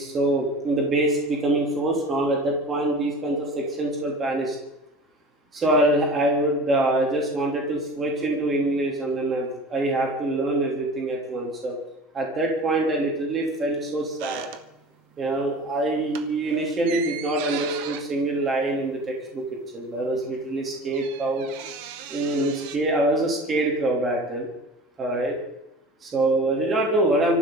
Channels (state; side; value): normal; both; correlation 0.38